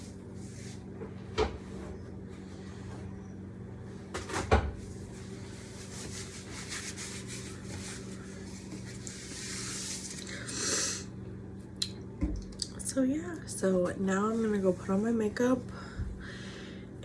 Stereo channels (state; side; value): identical; both; correlation 1.00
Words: So yeah, so now I'm gonna go put on my makeup